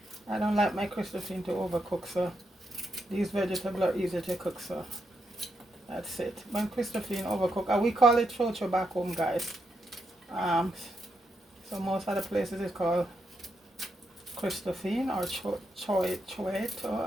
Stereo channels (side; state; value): both; normal; correlation 0.82